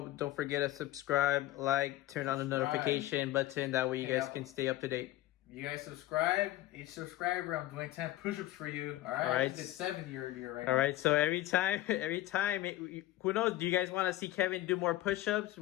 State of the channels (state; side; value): quieter; right; 15.4 dB